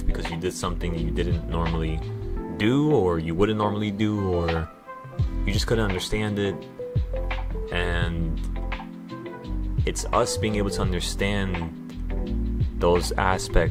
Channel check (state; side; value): identical; both; correlation 1.00